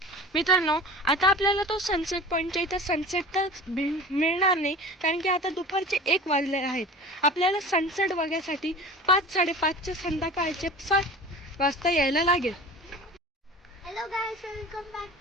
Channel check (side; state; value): both; normal; correlation 0.38